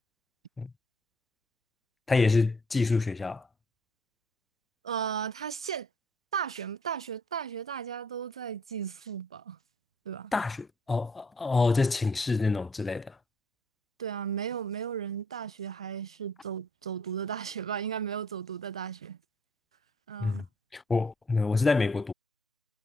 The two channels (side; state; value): both; normal; correlation 0.67